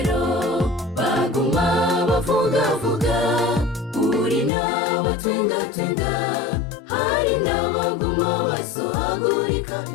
baguma bavugavuga, uri n'abatwengatwenga, hari n'abaguma basohagurika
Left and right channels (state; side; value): drops out; right; at 4.5 s